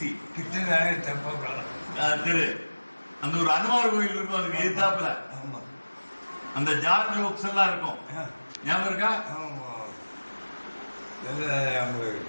கிருஷ்ணராயர் தெப்பக்குளம் தெரு. அந்த ஒரு அனுமார் கோயில் இருக்கும். அதுக்கு எதிர்த்தாப்புல அந்த ஜார்ஜ் புக்ஸ் எல்லாம் இருக்கும். ஞாபகம் இருக்கா?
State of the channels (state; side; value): inverted; both; correlation -1.00